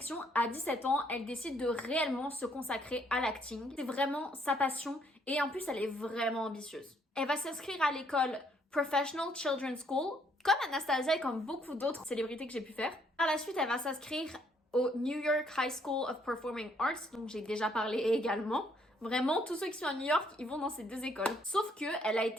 à 17 ans, elle décide de réellement se consacrer à l'acting. C'est vraiment sa passion et en plus elle est vraiment ambitieuse. Elle va s'inscrire à l'école Professional Children's School, comme Anastasia et comme beaucoup d'autres célébrités que j'ai pu faire. Par la suite, elle va s'inscrire au New York High School of Performing Arts, dont j'ai déjà parlé également. Vraiment, tous ceux qui sont à New York, ils vont dans ces deux écoles. Sauf que elle a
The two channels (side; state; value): both; normal; correlation 0.68